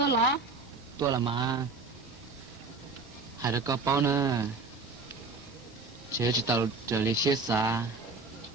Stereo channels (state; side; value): quieter; left; 4.0 dB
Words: lọ. Tôi là mà hai đứa có bao nữa chế chỉ tàu trở lại xe xa